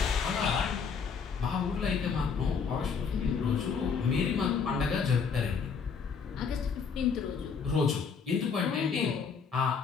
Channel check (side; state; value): right; quieter; 5.8 dB